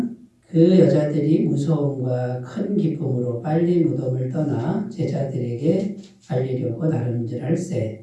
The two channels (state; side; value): identical; both; correlation 1.00